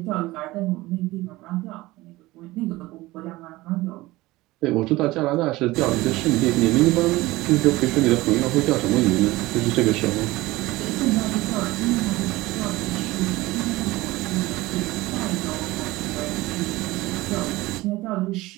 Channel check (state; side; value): quieter; left; 19.2 dB